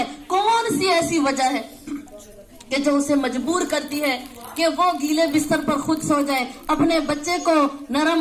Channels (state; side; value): identical; both; correlation 1.00